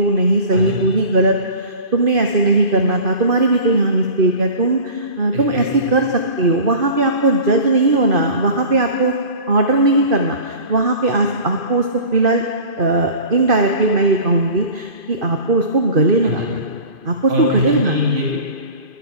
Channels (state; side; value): late; left; 2.5 ms